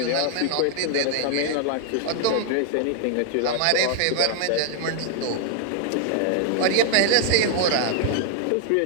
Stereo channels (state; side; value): different; both; correlation 0.00